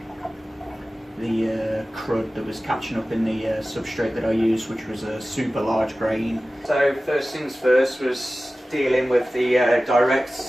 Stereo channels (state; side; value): normal; both; correlation 0.96